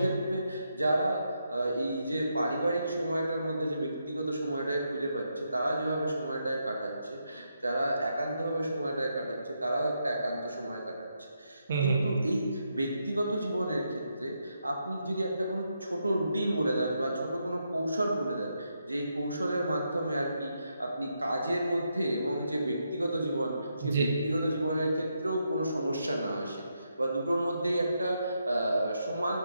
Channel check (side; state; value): both; inverted; correlation -0.81